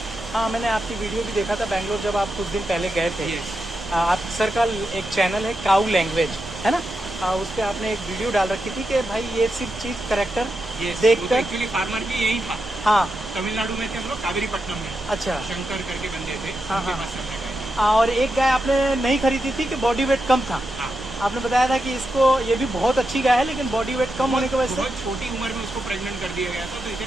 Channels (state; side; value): normal; both; correlation 0.87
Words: हाँ, मैंने आपकी वीडियो भी देखा था बैंगलोर जब आप कुछ दिन पहले गए थे। यस। आप सर का एक चैनल है काऊ लैंग्वेज, है ना? उस पर आपने एक वीडियो डाल रखी थी कि भाई ये सिर्फ चीज़ करेक्टर देखकर। एक्चुअली फार्मर भी यही था। हाँ, तमिलनाडु में थे हम लोग, कावेरीपट्टनम में। अच्छा। शंकर करके बंदे थे। हाँ, उनके हाँ। पास से हमने गए। और एक गाय आपने नहीं खरीदी थी कि बॉडी वेट कम था। हाँ। आपने बताया था कि इसको ये भी बहुत अच्छी गाय है लेकिन बॉडी वेट कम होने की वजह से। बहुत छोटी उम्र में उसको प्रेग्नेंट कर दिया गया था, तो